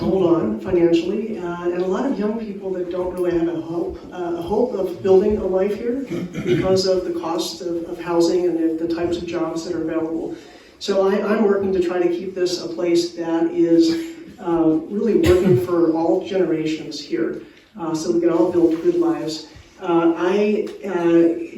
hold on financially, and a lot of young people that don't really have a hope of building a life here because of the cost of housing and the types of jobs that are available. So I'm working to try to keep this a place that is really working for all generations here, so we can all build good lives. I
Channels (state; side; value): identical; both; correlation 1.00